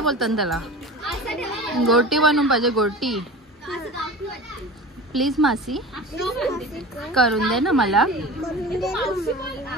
बोलतात त्याला? गोटी बनवून पाहिजे. गोटी प्लीज मासी करून दे ना मला.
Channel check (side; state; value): both; normal; correlation 0.34